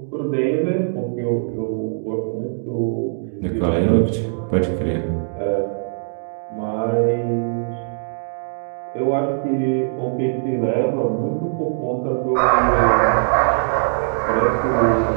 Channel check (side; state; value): left; silent; digital silence